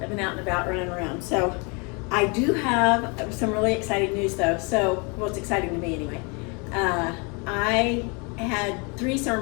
been out and about running around. So I do have some really exciting news though. Well, it's exciting to me anyway. I had 3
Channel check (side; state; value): right; quieter; 31.8 dB